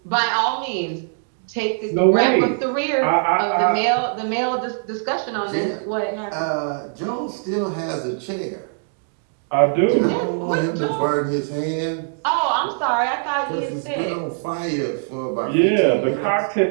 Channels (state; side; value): silent; left; digital silence